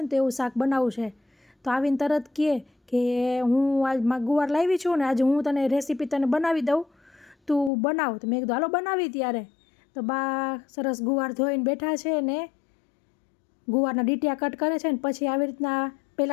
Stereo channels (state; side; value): drops out; right; at 7.7 s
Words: ને તો એવું શાક બનાવવું છે। તો આવીને તરત કહે કે હું આજ ગુવાર લાવી છું ને આજે હું તને રેસીપી તને બનાવી દઉં, તું બનાવ। તો મેં કીધું હાલો બનાવી। ત્યારે તો બા સરસ ગુવાર ધોઈને બેઠા છે ને ગુવારના ડીટિયા કટ કરે છે ને પછી આવી રીતના